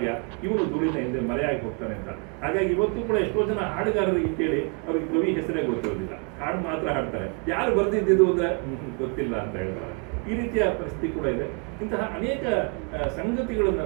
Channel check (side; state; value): left; quieter; 36.5 dB